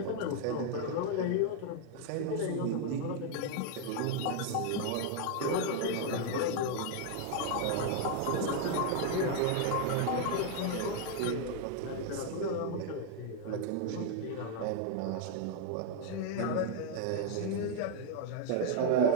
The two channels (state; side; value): different; both; correlation 0.00